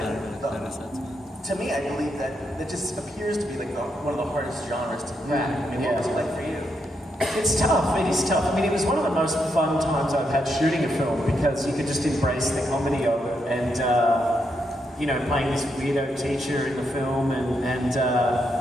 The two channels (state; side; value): normal; both; correlation 0.80